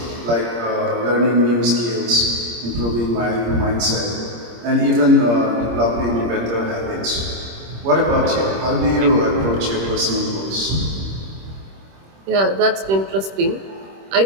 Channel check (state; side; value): late; left; 26 ms